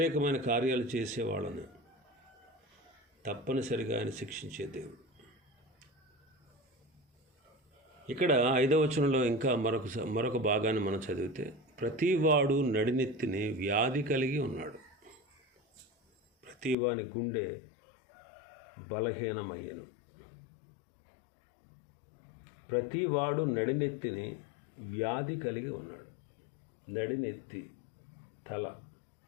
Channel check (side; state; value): right; drops out; at 16.8 s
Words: కార్యాలు చేసేవాళ్ళని తప్పనిసరిగా ఆయన శిక్షించే దేవుడు. ఇక్కడ 5వ వచనంలో ఇంకా మరొక భాగాన్ని మనం చదివితే, ప్రతివాడు నడినెత్తిని వ్యాధి కలిగి ఉన్నాడు. ప్రతివాని గుండె బలహీనమయ్యను. ప్రతివాడు నడినెత్తిని వ్యాధి కలిగి ఉన్నాడు. నడినెత్తి, తల